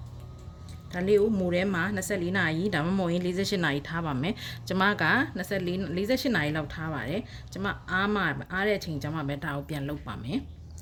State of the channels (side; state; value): both; identical; correlation 1.00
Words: ဒါလေးကိုမူထဲမှာ24နာရီဒါမှမဟုတ်ရင်48နာရီထားပါမယ်ကျမက48နာရီလောက်ထားပါတယ်ကျမအားတဲ့အချိန်ကျမပဲဒါကိုပြန်လုပ်ပါမယ်